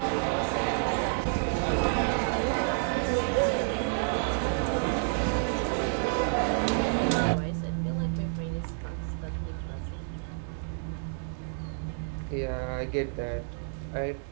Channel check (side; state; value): left; silent; 58 dB below the other